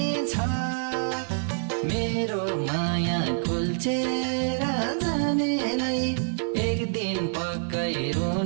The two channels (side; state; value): left; silent; 60 dB below the other